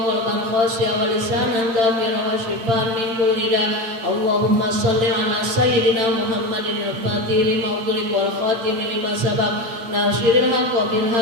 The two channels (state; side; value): late; left; 8.8 ms